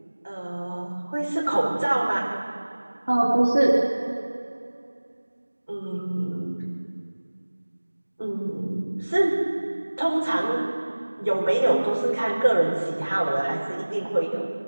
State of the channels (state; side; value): inverted; both; correlation -1.00